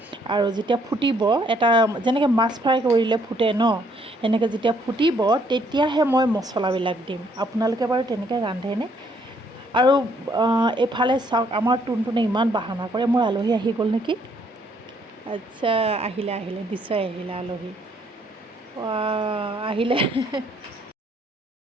আৰু যেতিয়া ফুটিব, এটা যেনেকৈ মাছ ফ্ৰাই কৰিলে ফুটে ন, এনেকৈ যেতিয়া ফুটিব তেতিয়াহে মই মছলাবিলাক দিম। আপোনালোকে বাৰু তেনেকৈ ৰান্ধেনে? আৰু এইফালে চাওক, আমাৰ টুনটুনে ইমান বাহানা কৰে। মোৰ আলহী আহি গ'ল নেকি? আচ্ছা, আহিলে নিশ্চয় আহিলে আলহী। আহিলে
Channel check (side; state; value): both; normal; correlation 0.67